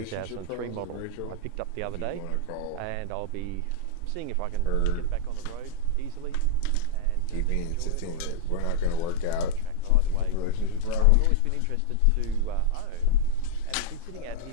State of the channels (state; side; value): different; both; correlation -0.02